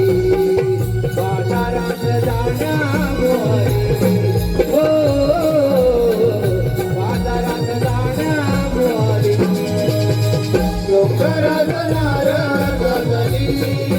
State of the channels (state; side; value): identical; both; correlation 1.00